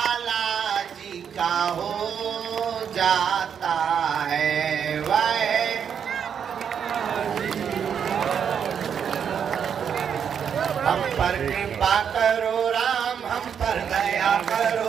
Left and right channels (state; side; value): quieter; left; 7.7 dB